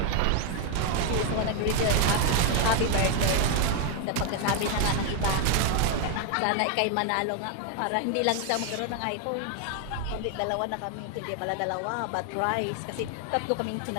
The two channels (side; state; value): both; different; correlation 0.00